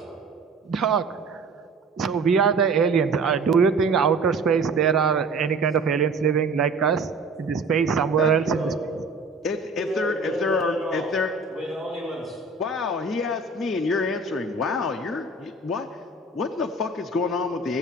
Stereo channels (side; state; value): left; quieter; 3.4 dB